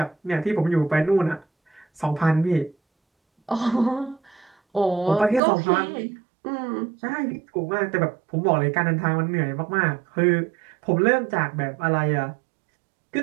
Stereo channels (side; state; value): left; drops out; at 5.4 s